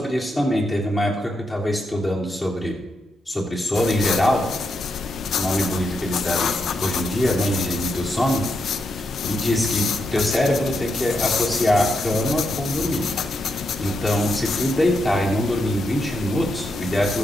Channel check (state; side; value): normal; both; correlation 0.83